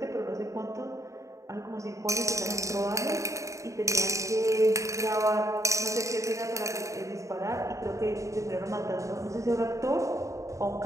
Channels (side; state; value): left; late; 0.15 ms